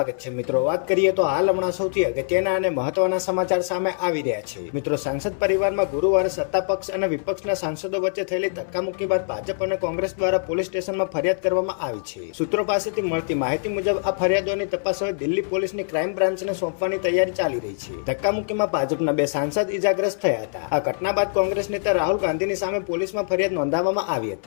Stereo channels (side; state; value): right; silent; 63 dB below the other